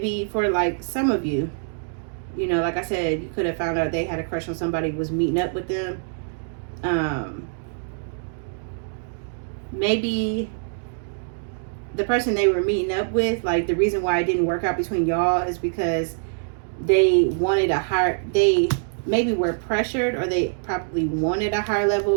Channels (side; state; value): left; silent; digital silence